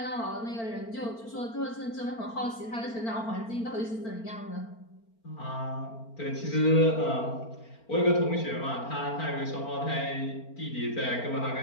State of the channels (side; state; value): right; late; 4.4 ms